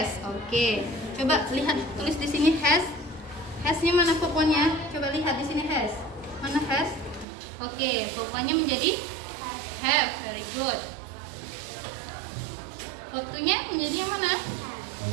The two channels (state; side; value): drops out; left; at 7.2 s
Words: Oke. Coba lihat, tulis di sini has. Has-nya mana pokoknya? Coba lihat di sini has. Mana has? Oke, pokoknya menjadi have. Very good. Waktunya menjadi yang mana?